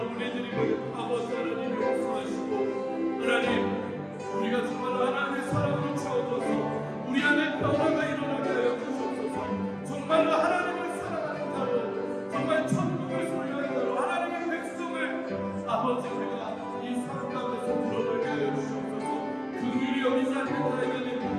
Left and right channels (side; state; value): both; identical; correlation 1.00